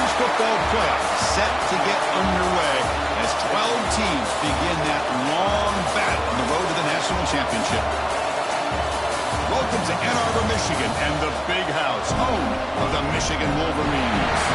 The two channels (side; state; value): both; identical; correlation 1.00